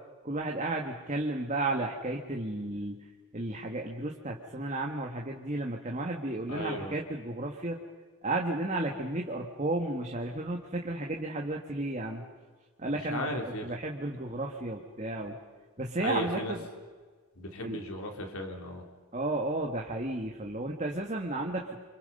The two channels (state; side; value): normal; both; correlation 0.30